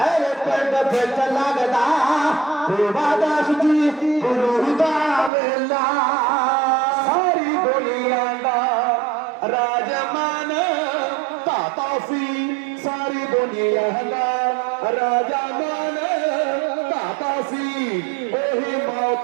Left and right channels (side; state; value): left; drops out; at 5.3 s